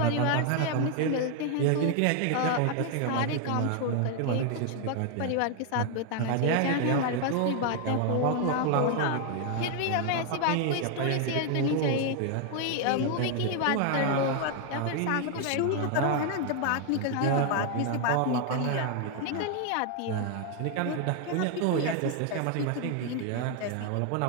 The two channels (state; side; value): different; both; correlation 0.00